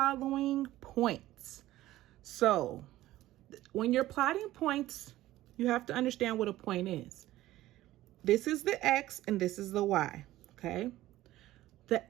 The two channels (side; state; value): left; quieter; 15.5 dB